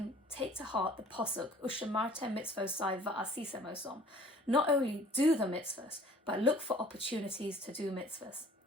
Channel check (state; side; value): normal; both; correlation 0.51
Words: take to heart the posuk, Ushamartem mitzvosai va'asisem osom. Not only do the mitzvahs, but look for opportunities to do mitzvahs.